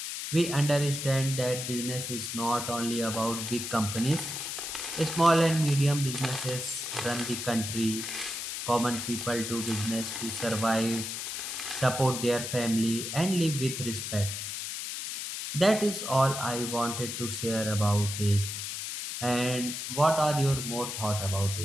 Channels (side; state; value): left; noise; hiss, 5 dB below the sound